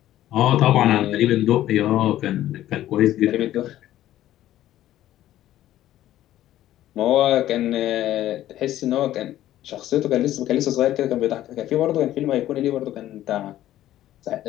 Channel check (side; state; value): right; quieter; 13.4 dB